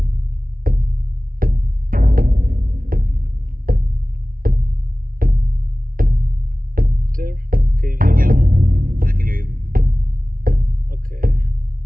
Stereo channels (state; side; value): late; left; 0.42 ms